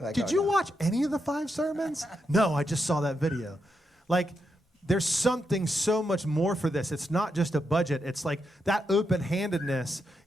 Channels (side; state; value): both; normal; correlation 0.83